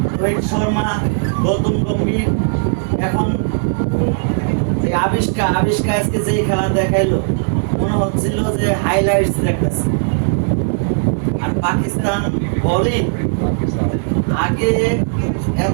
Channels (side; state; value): left; silent; digital silence